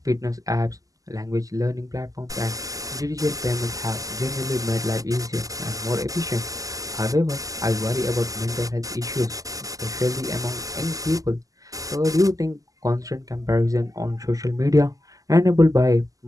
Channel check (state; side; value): late; left; 0.17 ms